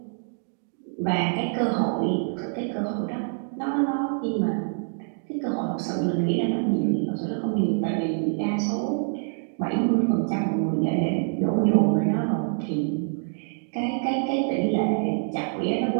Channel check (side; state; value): left; silent; 61 dB below the other